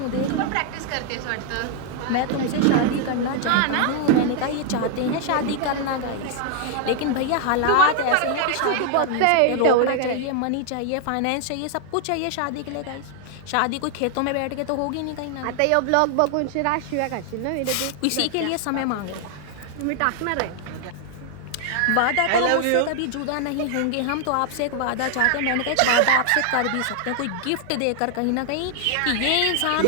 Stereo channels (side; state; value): both; different; correlation 0.00